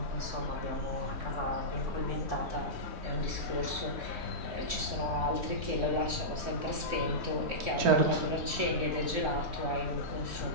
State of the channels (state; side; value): late; left; 3.6 ms